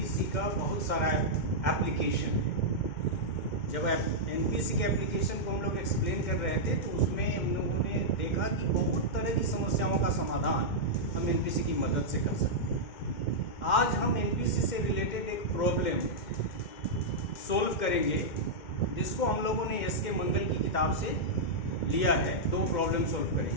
का बहुत सारा एप्लीकेशन है। जब एनपीसी के एप्लीकेशन को हम लोग एक्सप्लेन कर रहे थे तो उसमें हम लोगों ने देखा कि बहुत तरह की समस्याओं का समाधान हम एनपीसी की मदद से कर सकते हैं। आज हम एनपीसी से रिलेटेड एक प्रॉब्लम सोल्व करेंगे जिसको हम लोगों ने एस के मंगल की किताब से लिया है। दो प्रॉब्लम सोल्व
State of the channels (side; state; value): right; late; 2.1 ms